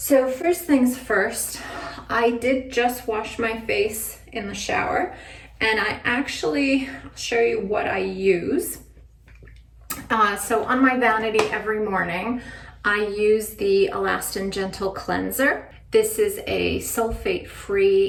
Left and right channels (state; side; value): identical; both; correlation 1.00